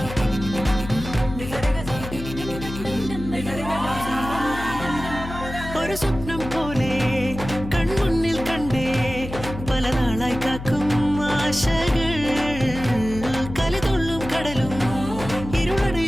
ഒരു സ്വപ്നം പോലെ കൺമുന്നിൽ കണ്ടേ പല നാളായി കാക്കും ആശകൾ കലിതുള്ളും കടലും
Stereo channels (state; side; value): noise; left; hum, 9 dB below the sound